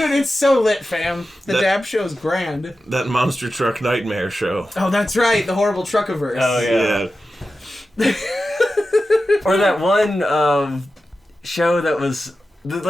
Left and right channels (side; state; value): both; normal; correlation 0.92